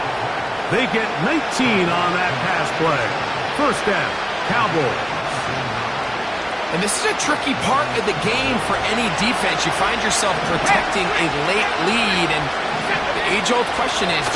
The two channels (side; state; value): both; identical; correlation 1.00